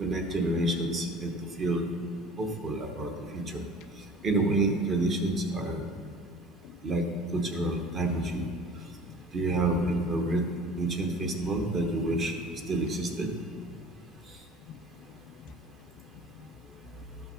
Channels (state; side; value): normal; both; correlation 0.44